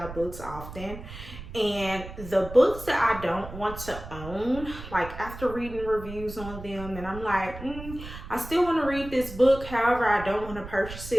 books often. And the books that I don't want to own, like after reading reviews on them and I'm like, I still want to read this book, however I don't want to purchase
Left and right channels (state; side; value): noise; right; rumble, 12 dB below the sound